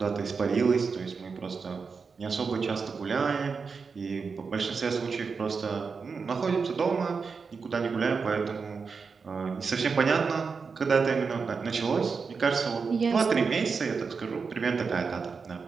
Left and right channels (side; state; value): left; quieter; 5.2 dB